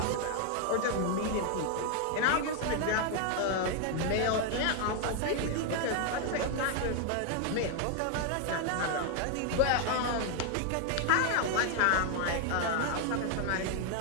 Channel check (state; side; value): different; both; correlation 0.00